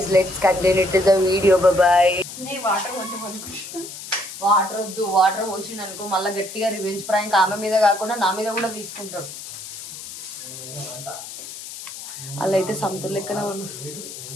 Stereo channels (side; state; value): left; noise; hiss, 11 dB below the sound